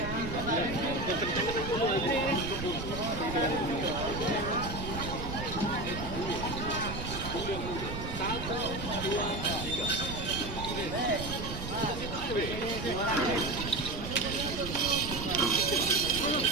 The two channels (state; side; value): noise; right; rumble, 7 dB below the sound